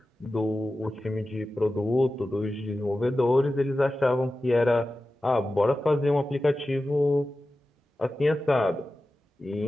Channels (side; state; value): both; normal; correlation 0.94